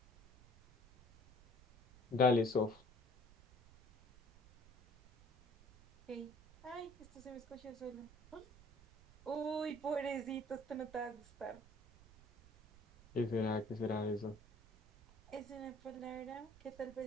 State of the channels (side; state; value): right; noise; rumble, 23 dB below the sound